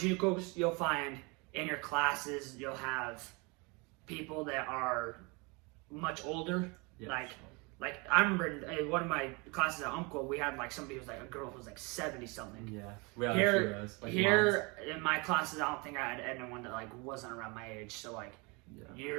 you'll find in your classes, you'll have people that are much older. Yeah, like I remember in one of my classes at Umpqua, we had like somebody who was like a girl who was like 70 something. Yeah, we had here in my classes, I don't think I had anyone that like wasn't around my age. So like,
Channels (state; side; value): quieter; left; 28.8 dB